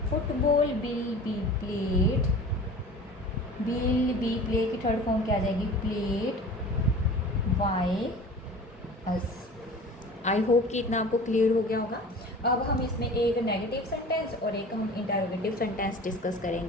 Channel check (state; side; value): normal; both; correlation 0.40